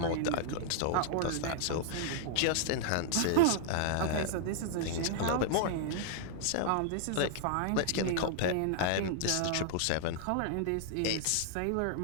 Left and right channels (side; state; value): both; different; correlation -0.01